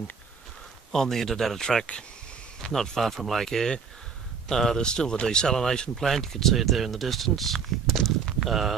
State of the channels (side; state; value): left; quieter; 6.2 dB